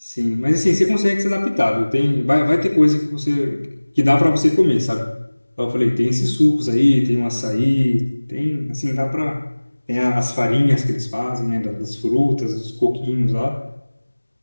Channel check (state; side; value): inverted; both; correlation -1.00